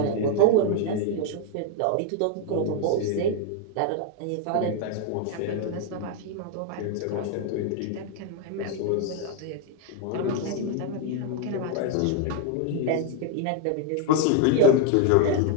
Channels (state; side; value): different; both; correlation 0.01